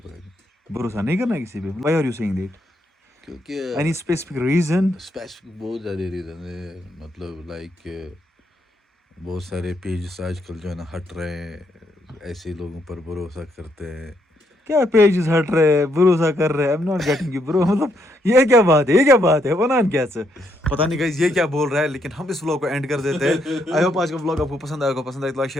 भरोसा नहीं करना किसी पे। Why are you saying that? क्योंकि एनी स्पेसिफिक रीजन? स्पेसिफिक बहुत ज़्यादा रीज़न है, मतलब लाइक बहुत सारे पेजेस आजकल जो है ना हट रहे हैं, ऐसे लोगों पर भरोसा करते हैं। क्या पेजेस हट रहे हैं, भरोसा कर रहे हैं? I am not getting you bro. मतलब ये क्या बात है, ये क्या बात है? बनान क्या से पता नहीं गाइस ये क्या बोल रहा है, लेकिन हम इस व्लॉग को एंड कर देते हैं। आई होप आज का व्लॉग आपको पसंद आएगा। पसंद आए तो लाइक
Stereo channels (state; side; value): normal; both; correlation 0.75